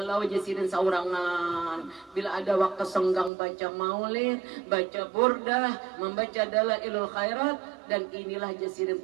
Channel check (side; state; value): left; drops out; at 3.3 s